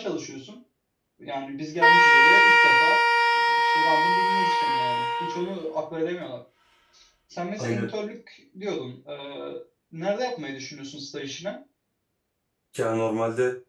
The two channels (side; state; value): both; identical; correlation 1.00